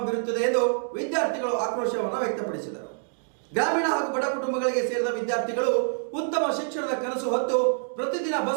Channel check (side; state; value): left; silent; digital silence